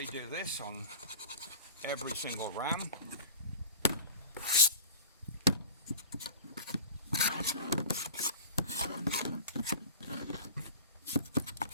do this on every single ram.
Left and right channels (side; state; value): both; inverted; correlation -0.39